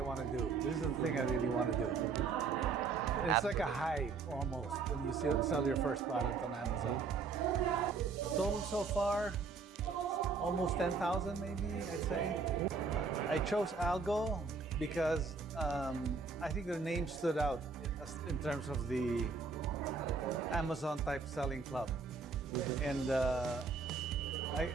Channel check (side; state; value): left; quieter; 4.8 dB